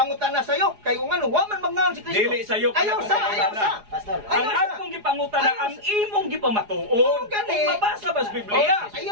sayo kay kung ano wa man mangaon si Kristo. Dili sayo ka Ayaw na sa, pangutana. ayaw sa. Pastor. Ang akong gipangutana ang imong gipamatuod. Gani. Kung mabasa ba sa Biblia?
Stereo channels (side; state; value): left; late; 4.8 ms